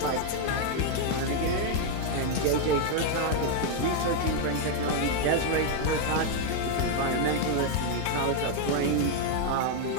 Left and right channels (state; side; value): different; both; correlation 0.00